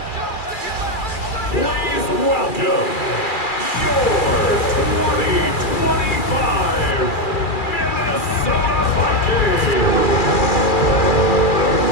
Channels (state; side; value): late; right; 2.4 ms